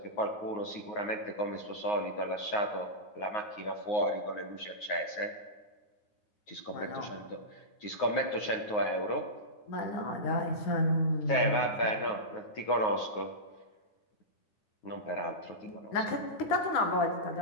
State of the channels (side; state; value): right; late; 9.5 ms